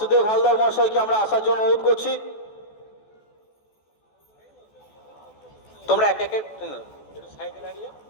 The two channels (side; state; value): right; late; 14 ms